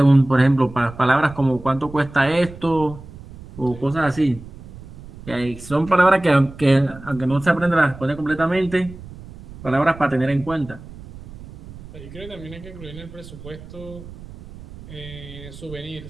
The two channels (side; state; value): right; noise; rumble, 16 dB below the sound